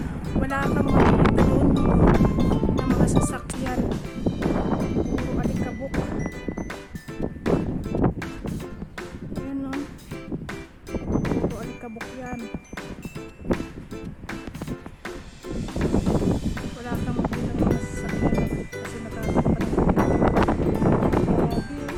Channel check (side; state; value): both; identical; correlation 1.00